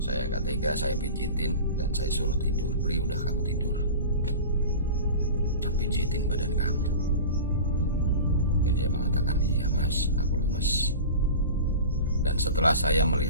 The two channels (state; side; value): inverted; both; correlation -0.33